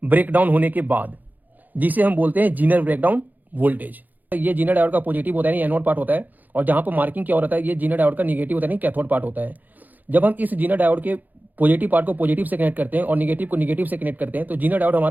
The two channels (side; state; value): left; late; 0.083 ms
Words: ब्रेकडाउन होने के बाद, जिसे हम बोलते हैं जीनर ब्रेकडाउन वोल्टेज। ये जीनर डायोड का पॉजिटिव होता है, एनोड पार्ट होता है, और जहां पर मार्किंग क्या हो रहा है, ये जीनर डायोड का निगेटिव होता है, कैथोड पार्ट होता है। जब हम इस जीनर डायोड के पॉजिटिव पार्ट को पॉजिटिव से कनेक्ट करते हैं और निगेटिव को निगेटिव से कनेक्ट करते हैं, तो जीनर डायोड